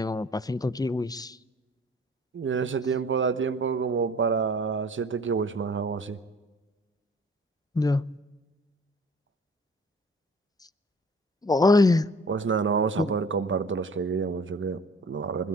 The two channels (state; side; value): normal; both; correlation 0.50